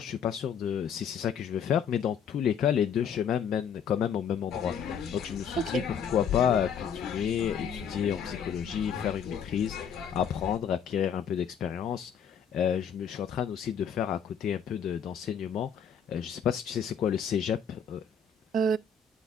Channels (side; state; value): right; quieter; 7.0 dB